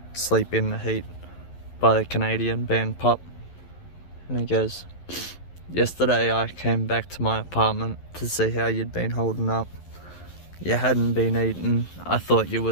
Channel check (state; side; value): late; right; 11 ms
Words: Sleep in the Heat by the Canadian band Pup. And he goes, "Yesterday I came back to my apartment to see how you'd been holding up. You hadn't been eating. I thought you were